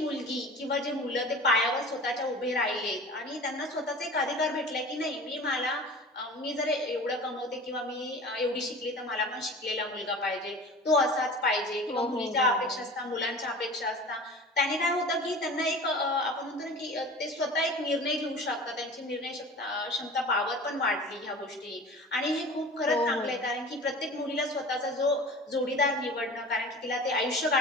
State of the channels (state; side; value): normal; both; correlation 0.38